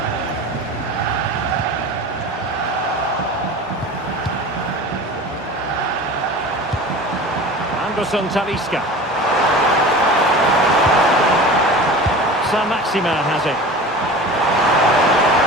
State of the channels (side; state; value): both; normal; correlation 0.36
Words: Anderson Talisca. Maximin has it.